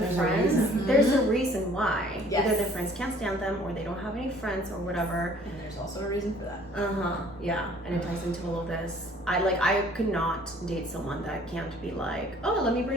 friends. There's a reason why. Either their friends can't stand them, or they don't have any friends, or whatever. And there's also a reason for that. Yeah, and it ties into all of this. I could not date someone that can't be like, oh, let me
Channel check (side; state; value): both; normal; correlation 0.55